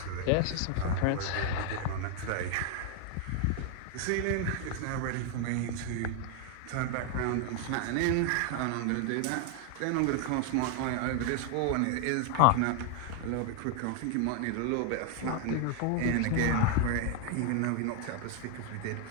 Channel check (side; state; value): both; different; correlation 0.00